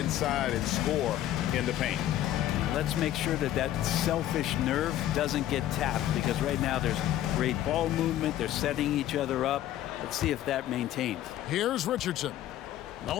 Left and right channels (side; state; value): right; quieter; 12.8 dB